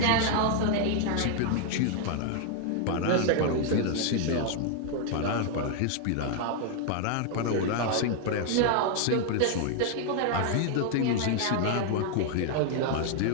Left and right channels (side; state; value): both; different; correlation 0.00